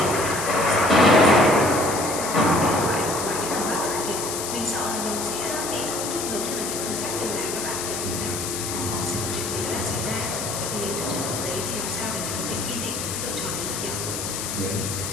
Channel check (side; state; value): left; noise; hiss, 4 dB below the sound